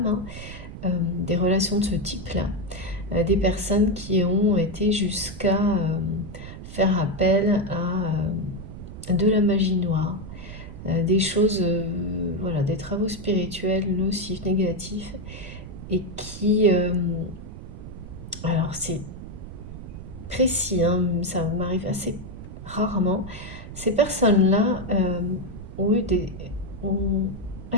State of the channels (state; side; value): noise; right; rumble, 12 dB below the sound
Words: hein, des relations de ce type-là, des personnes qui ont été jusqu'à faire appel à de la magie noire, des choses, voilà, des travaux spirituels nocifs, négatifs, et qui, alors c'est précis, hein, ça m'arrive assez rarement, ces personnes-là ont